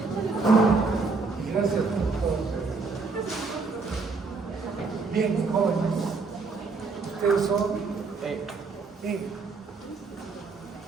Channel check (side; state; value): left; quieter; 4.3 dB